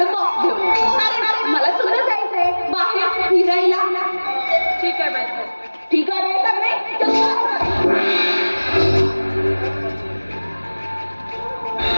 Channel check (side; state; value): both; inverted; correlation -1.00